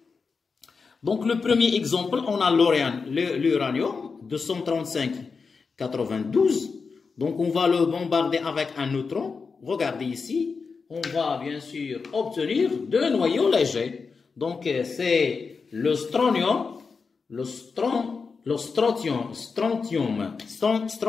Donc, le premier exemple, on a l'uranium, 235-92. Donc, on va le bombarder avec un neutron. Regardez ici. On va bien sûr obtenir deux noyaux légers. Donc, c'est le strontium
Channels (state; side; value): quieter; right; 5.0 dB